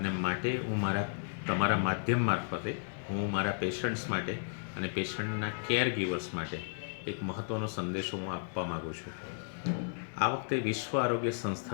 માટે હું તમારા માધ્યમ મારફતે હું મારા પેશન્ટ્સ માટે અને પેશન્ટના કેર ગીવર્સ માટે એક મહત્ત્વનો સંદેશો હું આપવા માગું છું. આ વખતે વિશ્વ આરોગ્ય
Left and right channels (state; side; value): silent; right; digital silence